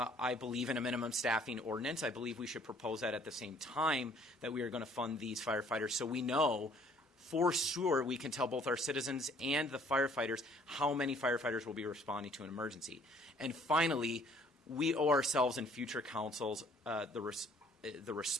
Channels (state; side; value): normal; both; correlation 0.59